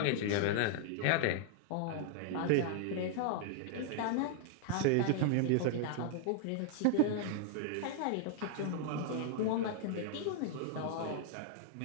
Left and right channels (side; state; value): both; different; correlation -0.01